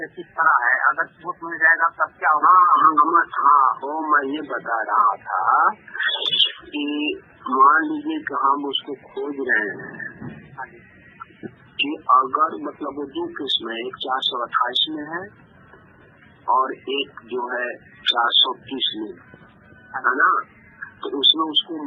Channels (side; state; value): both; identical; correlation 1.00